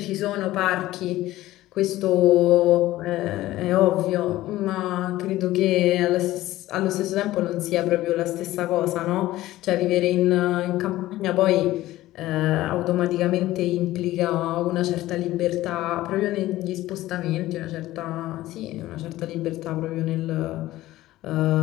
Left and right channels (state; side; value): quieter; right; 16.1 dB